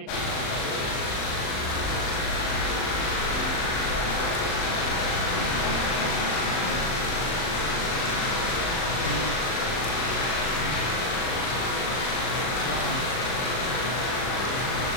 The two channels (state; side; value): late; right; 39 ms